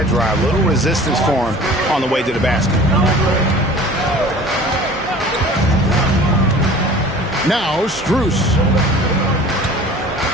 drive. Little resistance for him on the way to the basket. Now Strus.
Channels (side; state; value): both; normal; correlation 0.44